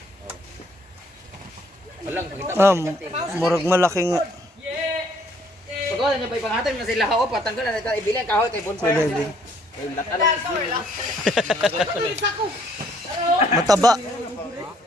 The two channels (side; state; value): both; normal; correlation 0.64